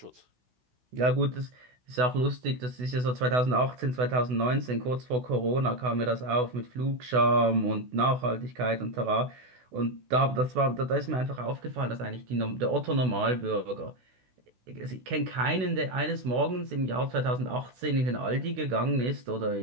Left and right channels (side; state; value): left; late; 16 ms